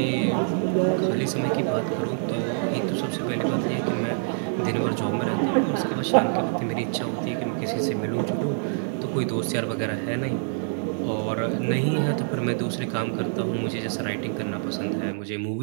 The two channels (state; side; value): silent; left; 61 dB below the other